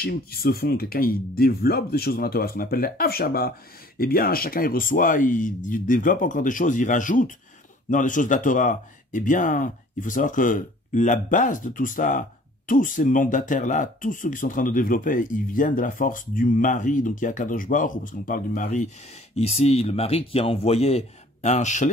qui se font, quelqu'un il développe des choses dans la Torah, ce qu'on appelle les Avshaba, eh bien chacun il reçoit, il développe encore des choses, il rajoute dans les choses de la Torah. Eh bien, il faut savoir que la base de tout ça, tous ces mandataires-là, tous ceux qui sont en train de développer, ils viennent de la force du mari, donc il y a Akadosh Baruch Hu, parce qu'on parle du mari ici, le mari qui a envoyé un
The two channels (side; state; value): both; normal; correlation 0.53